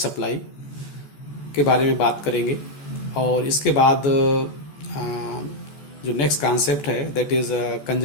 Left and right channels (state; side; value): late; right; 14 ms